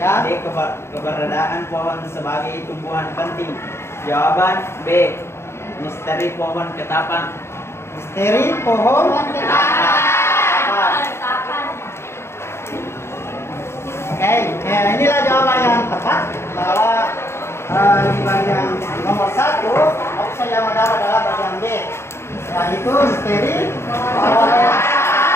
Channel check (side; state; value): right; late; 0.12 ms